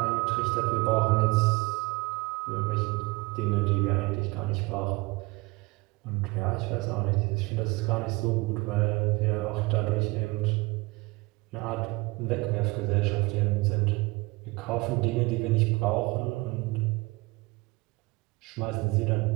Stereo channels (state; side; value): quieter; left; 24.0 dB